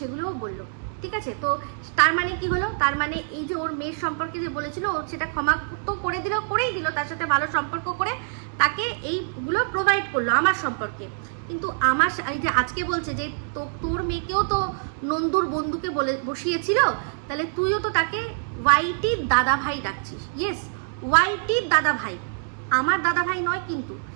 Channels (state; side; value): silent; left; digital silence